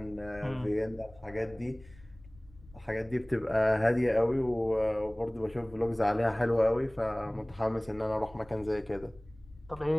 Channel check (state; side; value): noise; left; rumble, 24 dB below the sound